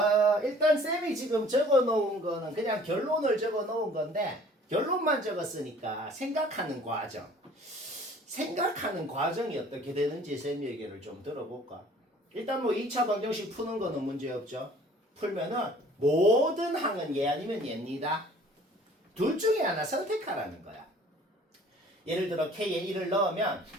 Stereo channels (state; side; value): normal; both; correlation 0.52